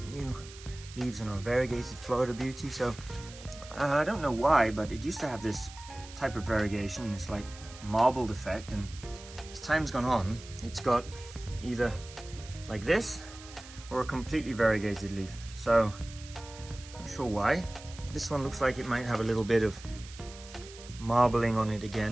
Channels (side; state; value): right; noise; hiss, 17 dB below the sound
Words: new leaves on our variegated Florida Beauty. So I don't know why, but it used to have this type of variegation, this like marbled effect, and as time's gone on, it's got either like this or a completely variegated leaf. So not sure why. This one looks like it might have a little bit of marbling on it